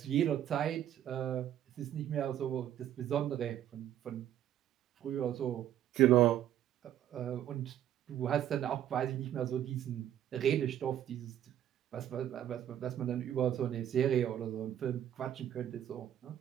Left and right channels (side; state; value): left; quieter; 11.2 dB